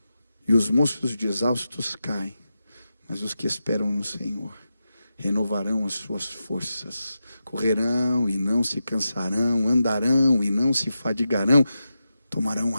e os moços de exaustos caem, mas os que esperam no Senhor renovarão as suas forças, correrão e não se cansarão, andarão e não se fadigarão, tomarão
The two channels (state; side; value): inverted; both; correlation -0.90